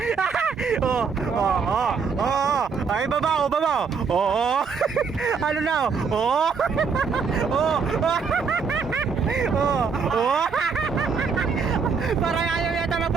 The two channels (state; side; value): quieter; left; 5.7 dB